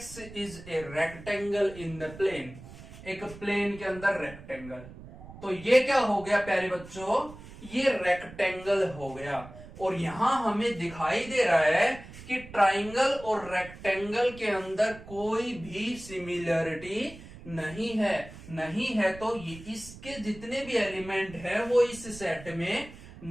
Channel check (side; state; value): right; noise; rumble, 16 dB below the sound